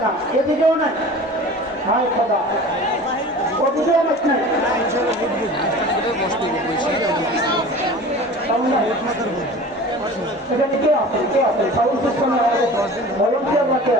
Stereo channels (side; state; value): both; normal; correlation 0.39